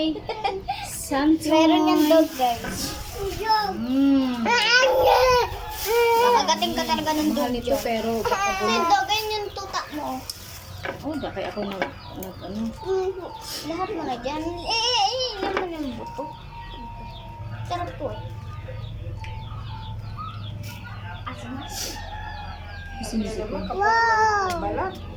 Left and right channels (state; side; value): identical; both; correlation 1.00